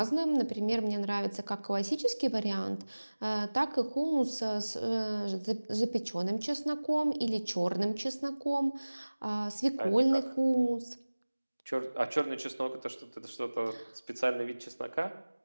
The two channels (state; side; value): inverted; both; correlation -1.00